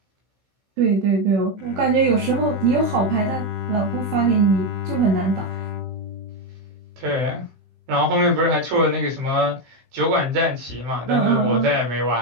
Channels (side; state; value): left; late; 16 ms